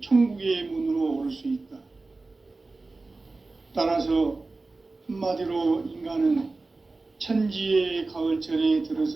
천국의 문으로 오를 수 있다. 따라서 한마디로 인간은 천지의 가을철에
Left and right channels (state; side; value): quieter; left; 3.5 dB